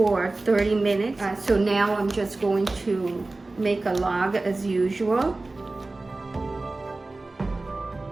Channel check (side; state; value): left; quieter; 3.2 dB